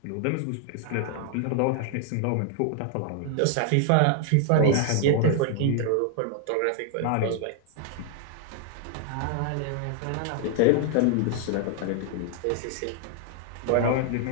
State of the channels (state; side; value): different; both; correlation 0.00